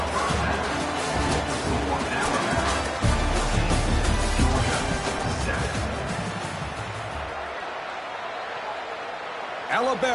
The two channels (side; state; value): both; identical; correlation 1.00